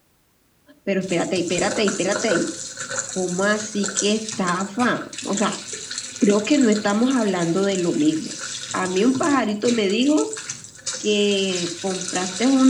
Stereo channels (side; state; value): both; identical; correlation 1.00